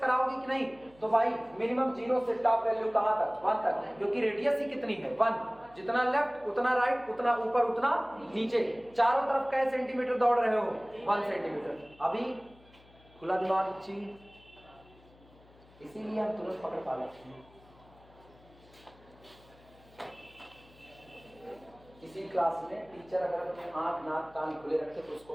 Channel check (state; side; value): noise; left; hum, 26 dB below the sound